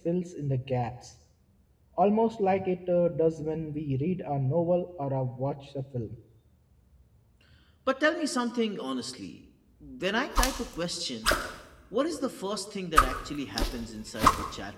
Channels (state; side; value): identical; both; correlation 1.00